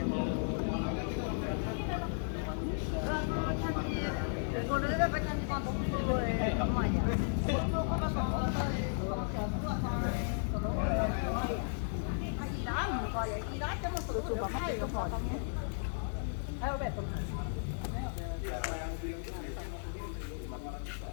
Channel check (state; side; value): silent; right; 55 dB below the other